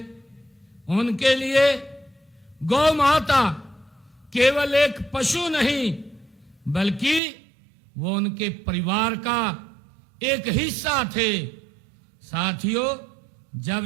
उनके लिए गौ माता केवल एक पशु नहीं, बल्कि वो उनके परिवार का एक हिस्सा थे। साथियों,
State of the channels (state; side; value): drops out; left; at 7.2 s